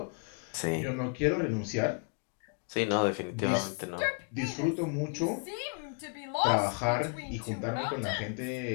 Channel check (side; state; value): right; quieter; 38.6 dB